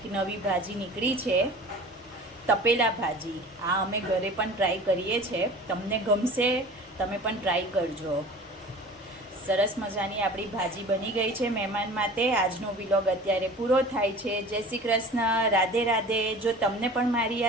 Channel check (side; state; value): both; normal; correlation 0.40